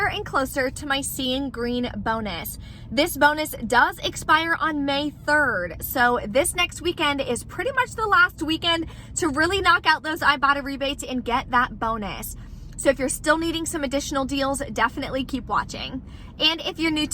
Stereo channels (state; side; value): identical; both; correlation 1.00